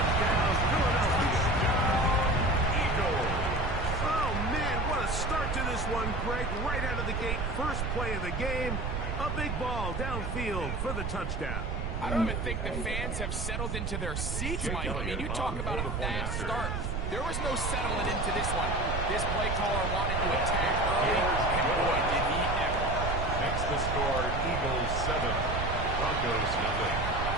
Philadelphia. Eagles. Oh, man, what a start to this one, Greg. Right out of the gate, first play of the game. A big ball downfield for the touchdown. I don't even think the fans have settled into their seats, Mike. I mean, you talk about a fast start. There was no settling into this one. This play caller wanted to attack early, and boy, did he ever. Makes the score Eagles 7, Broncos nothing.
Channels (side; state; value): right; noise; rumble, 2 dB below the sound